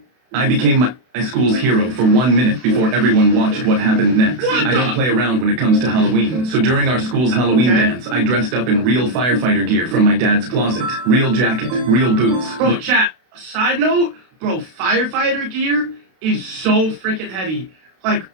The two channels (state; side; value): late; left; 32 ms